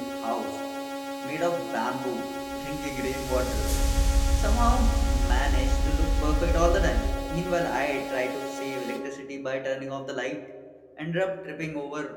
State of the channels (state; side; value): identical; both; correlation 1.00